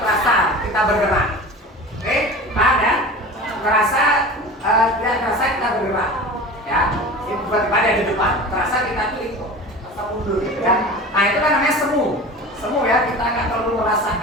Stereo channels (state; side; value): normal; both; correlation 0.35